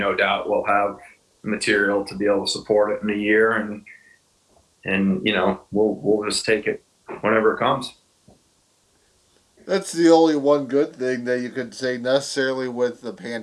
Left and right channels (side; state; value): both; identical; correlation 1.00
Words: doubt we'll have material to be able to support it in a year, and we'll just take it whenever it comes. That's the only one good thing that you could say necessarily with the